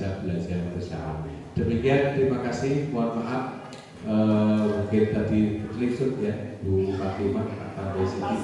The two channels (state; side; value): identical; both; correlation 1.00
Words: belajar bersama. Demikian, terima kasih. Mohon maaf mungkin tadi terlihat ya Bu Fatimah atau Siti,